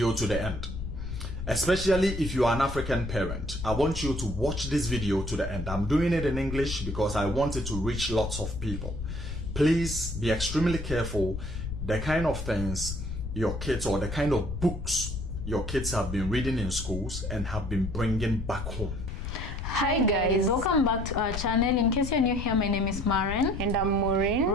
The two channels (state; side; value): noise; left; rumble, 6 dB below the sound